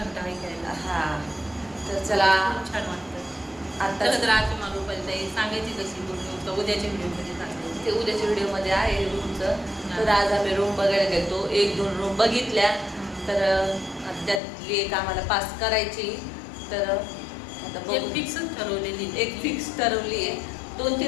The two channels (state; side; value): drops out; right; at 14.4 s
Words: ऐकायला. तर चला, खूप छान वाटतं. आता तर आज तुम्हाला रुपाली सांगायची कशी बोलून उद्याच्या व्हिडिओमध्ये सांगायची. ते उद्याच्या व्हिडिओमध्ये आहे रूमचं. तर आज आम्ही रूम बघायला गेलो. 1-2 रूम बघितल्या. तर त्यातली एक आम्हाला पास करायची. तर आता एक फिक्सच ठरवलेली, एक फिक्स ठरवली आहे.